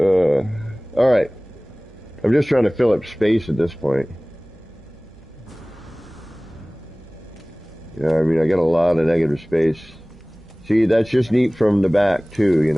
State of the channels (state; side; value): noise; right; hum, 25 dB below the sound